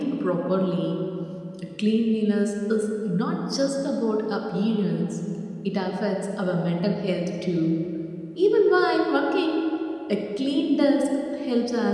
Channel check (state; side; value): identical; both; correlation 1.00